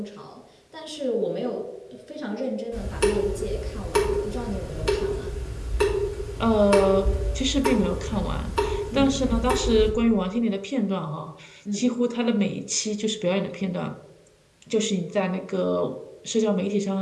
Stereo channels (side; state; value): both; identical; correlation 1.00